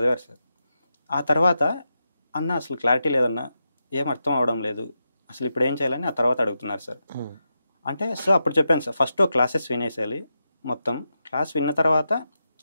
సార్. ఆ తర్వాత అన్న అసలు క్లారిటీ లేదన్నా, ఏం అర్థం అవడం లేదు, అసలు ఇప్పుడు ఏం చేయాలని ఆ తర్వాత అడుగుతున్నారు సార్. అంటే సో అప్పుడు చెప్పాను సార్, ఫస్ట్ క్లాసెస్ వినేసేయాలి, మొత్తం క్లాస్ విన్న తర్వాత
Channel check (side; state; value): both; inverted; correlation -0.87